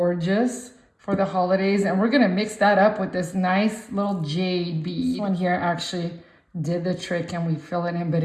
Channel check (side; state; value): both; identical; correlation 1.00